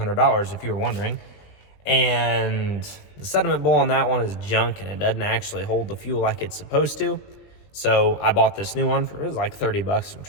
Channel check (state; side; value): late; right; 20 ms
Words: if you were wondering. And the sediment bowl on that one is junk and it doesn't actually hold the fuel like it's supposed to. So I bought this new one for, it was like 30 bucks from